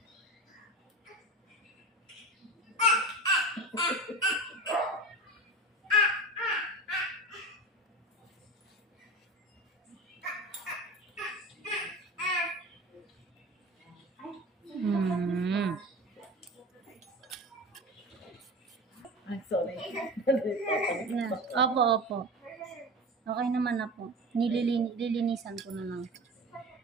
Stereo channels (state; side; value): normal; both; correlation 0.31